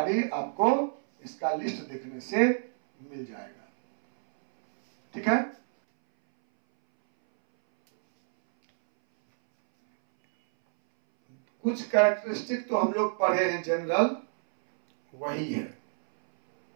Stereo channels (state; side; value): silent; left; 59 dB below the other